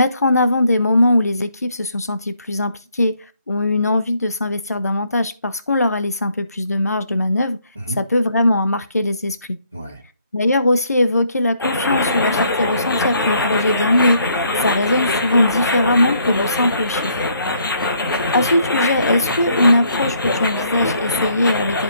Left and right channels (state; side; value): inverted; both; correlation -0.69